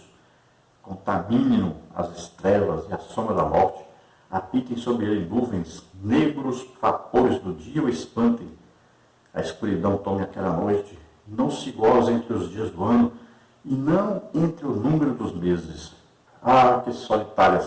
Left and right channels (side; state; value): both; identical; correlation 1.00